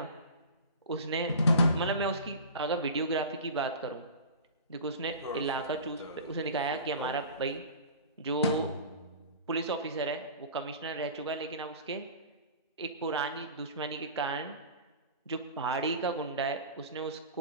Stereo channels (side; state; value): both; inverted; correlation -0.36